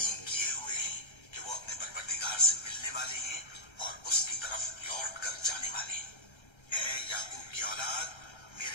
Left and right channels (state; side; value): late; right; 1.3 ms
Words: किए हुए हैं कि वो अपने परवरदिगार से मिलने वाले हैं और उसकी तरफ लौट कर जाने वाले हैं। ऐ याकूब की औलाद,